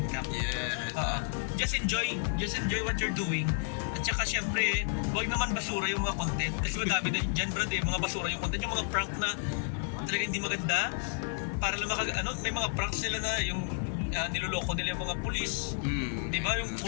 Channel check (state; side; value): silent; right; 57 dB below the other